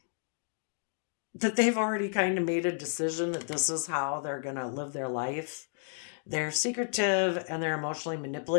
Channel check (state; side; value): silent; right; digital silence